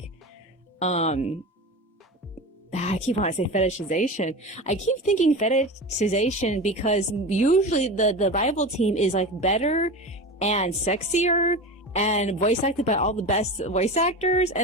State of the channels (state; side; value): normal; both; correlation 0.27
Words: I keep wanting to say fetishization. I keep thinking fetishization because usually the rival team is like better and sexier and voice acted by all the best voice actors